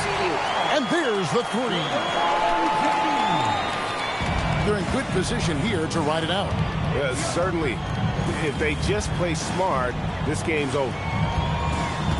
And there's the three. They're in good position here to ride it out. Yeah, certainly. If they just play smart, this game's over.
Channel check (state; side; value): identical; both; correlation 1.00